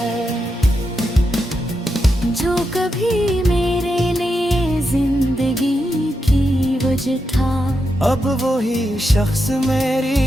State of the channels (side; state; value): both; normal; correlation 0.85